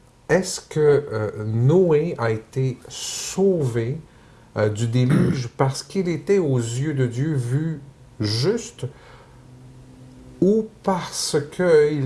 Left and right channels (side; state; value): both; identical; correlation 1.00